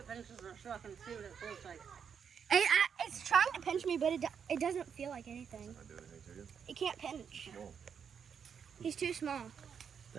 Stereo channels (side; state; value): left; quieter; 7.2 dB